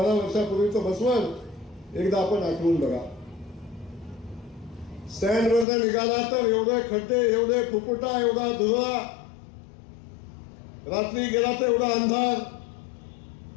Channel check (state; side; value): drops out; right; at 5.7 s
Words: वर्षापूर्वीचं म्हसवड एकदा आपण आठवून बघा. स्टँडवरनं निघाला तर एवढे खड्डे, एवढे फुकुटा, एवढा धुरा, रात्री गेला तर एवढा अंधार.